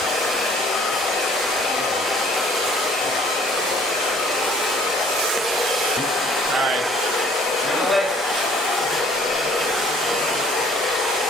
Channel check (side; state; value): both; normal; correlation 0.57